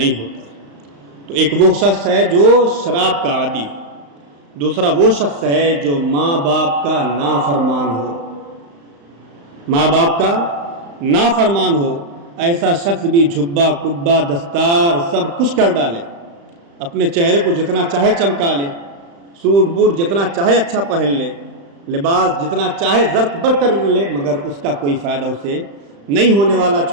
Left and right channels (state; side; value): late; left; 35 ms